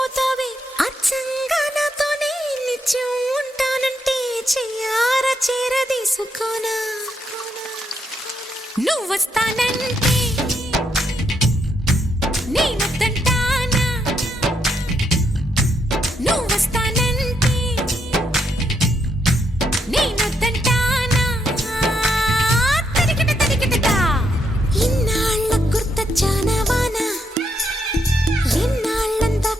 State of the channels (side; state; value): both; normal; correlation 0.78